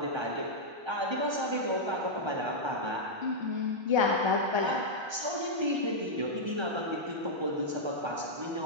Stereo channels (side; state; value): left; late; 1.3 ms